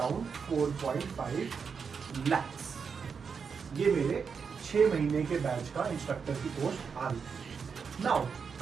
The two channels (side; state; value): left; quieter; 6.0 dB